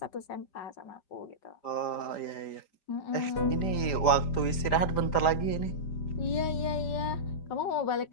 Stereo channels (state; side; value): late; right; 5.0 ms